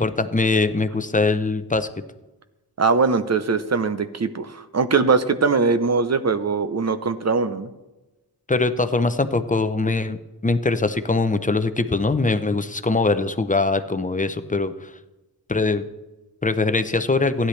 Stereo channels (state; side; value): normal; both; correlation 0.24